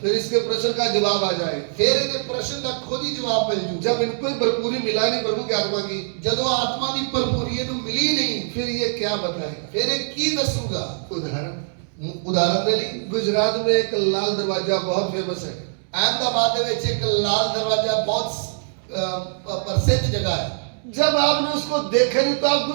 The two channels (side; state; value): left; silent; digital silence